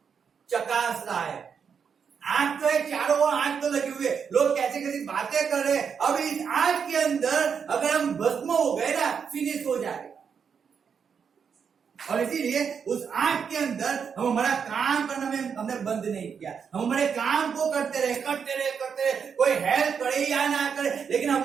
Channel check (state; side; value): quieter; left; 6.7 dB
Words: चकास रहा है, आंख तो है, चारों ओर आंख तो लगी हुई है, लोग कैसे कैसे बातें कर रहे हैं। अब इस आंख के अंदर अगर हम भस्म हो गए ना, फिनिश हो जाएगा। और इसीलिए उस आंख के अंदर हम हमारा काम करना में हमने बंद नहीं किया, हम हमारे काम को करते रहे, कोई हेल्प करे या ना करे, लेकिन